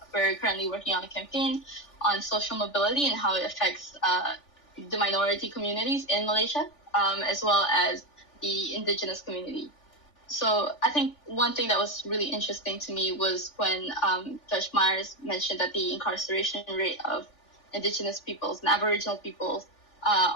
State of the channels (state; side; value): late; right; 3.5 ms